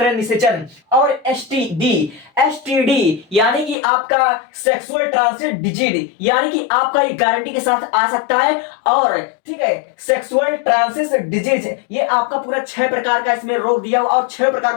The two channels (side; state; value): right; drops out; at 3.8 s